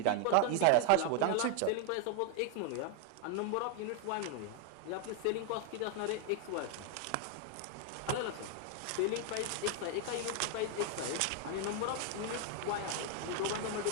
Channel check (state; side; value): different; both; correlation 0.00